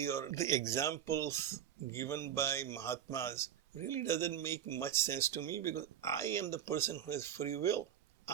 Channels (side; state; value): left; quieter; 10.1 dB